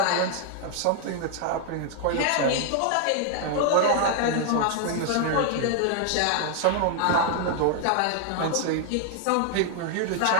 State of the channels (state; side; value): different; both; correlation 0.00